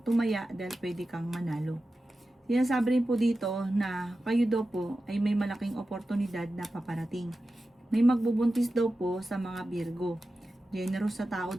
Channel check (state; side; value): normal; both; correlation 0.93